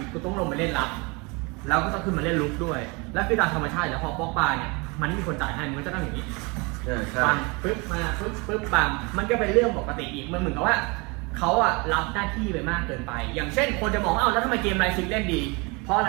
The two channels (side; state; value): left; quieter; 28.3 dB